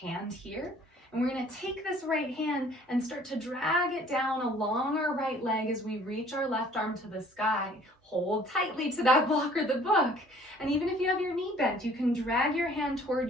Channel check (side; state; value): both; normal; correlation 0.55